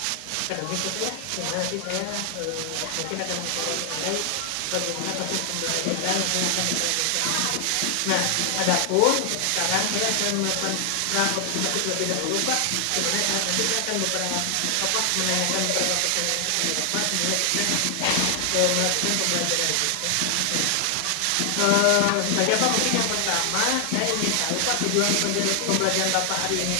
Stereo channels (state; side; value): different; both; correlation 0.00